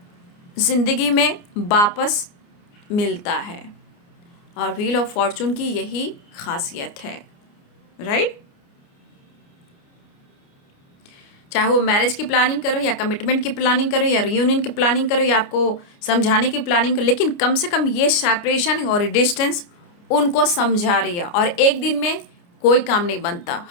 जिंदगी में वापस मिलता है, और व्हील ऑफ फॉर्चून की यही खासियत है, राइट। चाहे वो मैरिज की प्लानिंग करो, या कमिटमेंट की प्लानिंग करो, या रियूनियन की प्लानिंग करो, या आपको समझाने की प्लानिंग करो, लेकिन कम से कम ये सेपरेशन और डिस्टेंस उनको समझा रही है। और एक दिन में कोई काम नहीं बनता,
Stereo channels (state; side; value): late; right; 29 ms